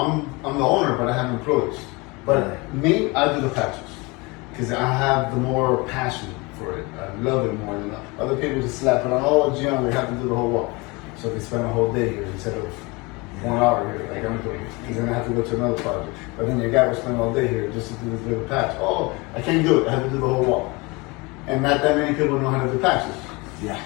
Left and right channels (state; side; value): quieter; right; 25.9 dB